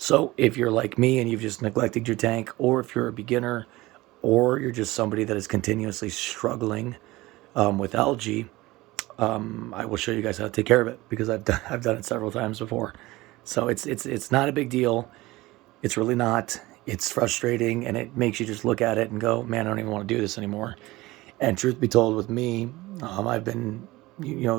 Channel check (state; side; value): quieter; left; 19.6 dB